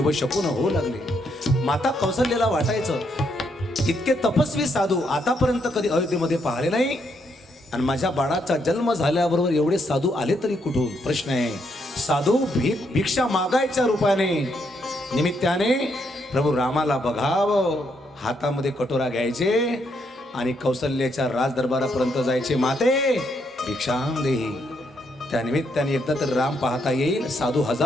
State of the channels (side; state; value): both; normal; correlation 0.76